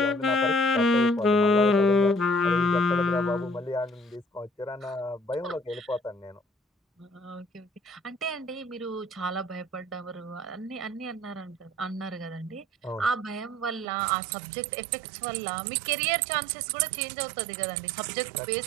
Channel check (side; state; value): left; drops out; at 13.9 s